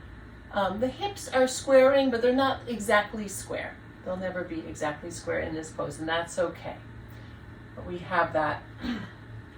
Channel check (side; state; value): both; identical; correlation 1.00